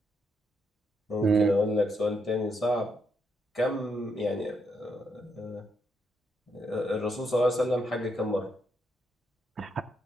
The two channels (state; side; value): normal; both; correlation 0.78